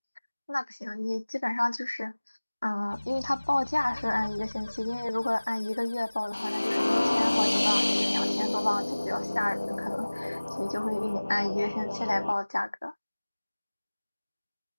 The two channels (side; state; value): both; inverted; correlation -1.00